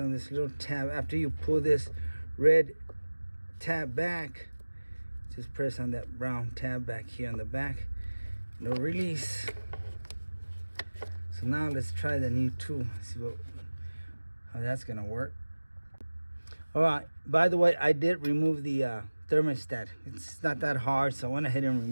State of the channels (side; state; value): both; inverted; correlation -1.00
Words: this little tab. After you pull this red tab back, just press on that brown tab back here on the back. No release. So now let's try the new tool. See how that's gonna work. All right, by the way, I did remove the thermostat. It's not that hard, so I went ahead and